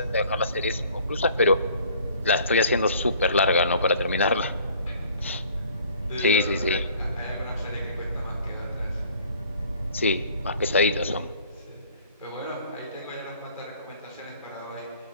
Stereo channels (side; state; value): both; inverted; correlation -0.53